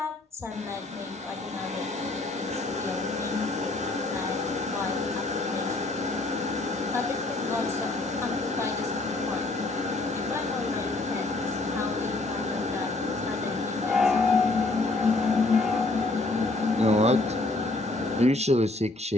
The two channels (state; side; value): quieter; right; 3.0 dB